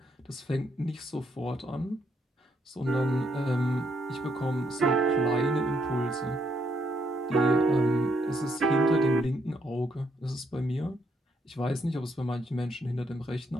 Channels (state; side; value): normal; both; correlation 0.75